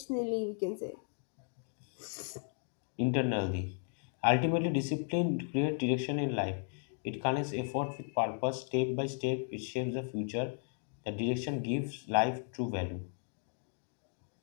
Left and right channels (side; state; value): right; silent; 54 dB below the other